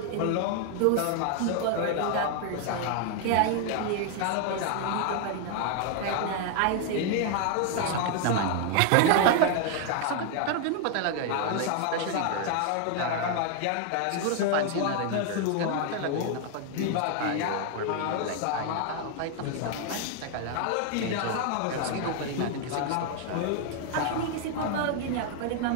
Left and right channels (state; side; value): different; both; correlation 0.00